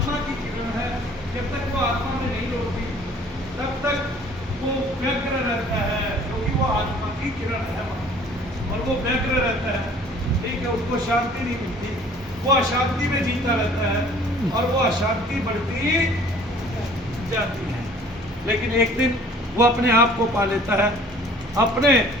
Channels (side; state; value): both; normal; correlation 0.52